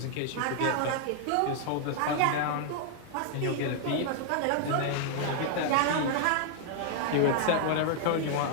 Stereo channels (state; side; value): different; both; correlation 0.00